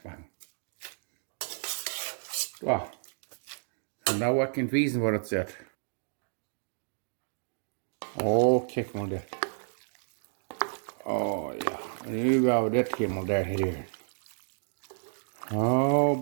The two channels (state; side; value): silent; left; digital silence